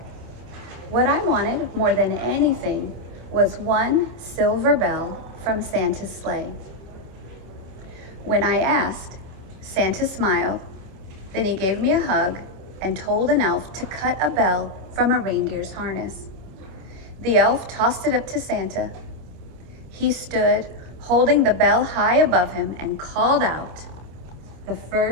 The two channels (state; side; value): late; left; 27 ms